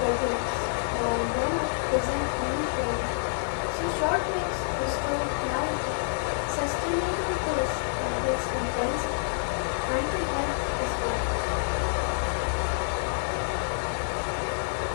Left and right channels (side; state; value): right; silent; digital silence